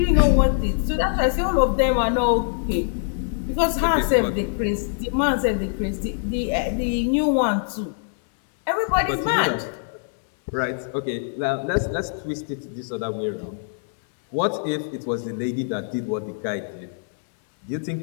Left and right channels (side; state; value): right; silent; 63 dB below the other